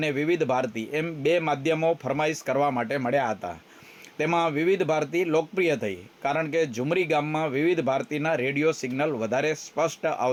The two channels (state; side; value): identical; both; correlation 1.00